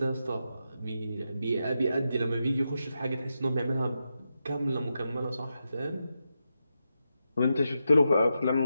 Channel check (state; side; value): inverted; both; correlation -0.87